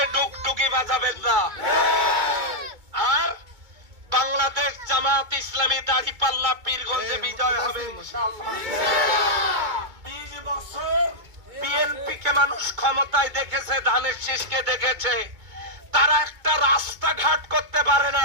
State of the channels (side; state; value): left; late; 2.2 ms